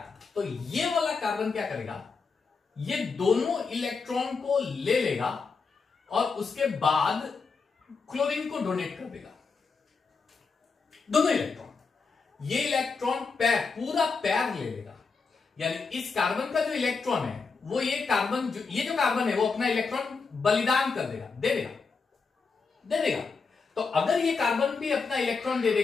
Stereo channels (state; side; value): quieter; right; 4.8 dB